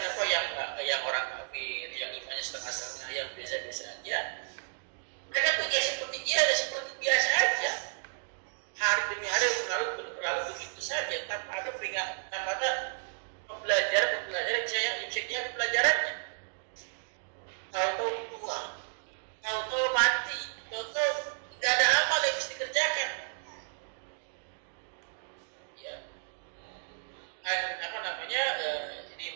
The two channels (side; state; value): left; silent; digital silence